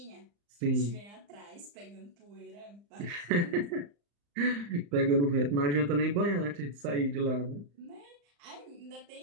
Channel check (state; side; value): late; left; 35 ms